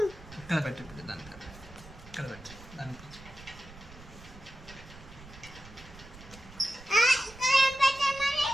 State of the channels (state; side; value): noise; right; rumble, 18 dB below the sound